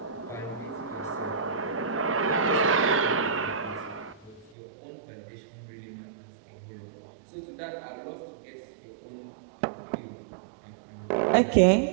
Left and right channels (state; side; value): drops out; left; at 4.5 s